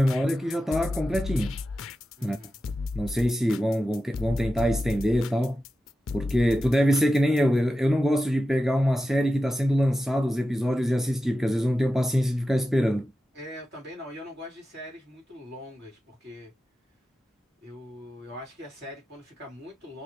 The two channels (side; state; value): both; normal; correlation 0.92